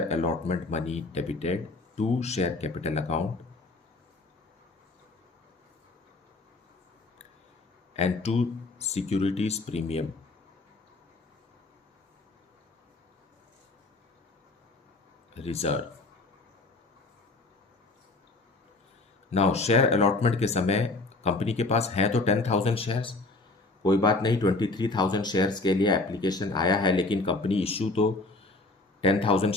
allotment money debited to share capital account and to securities premium reserve. Now share allotment के समय कंपनी के पास है तो 10,000 शेयर्स, कोई बात नहीं, 23,000 शेयर्स के लिए एप्लीकेशन आया है, लेकिन कंपनी इशू तो 10,000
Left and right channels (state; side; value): quieter; right; 3.3 dB